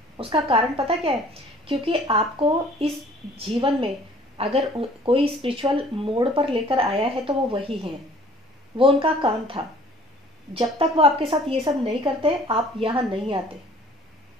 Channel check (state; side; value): normal; both; correlation 0.53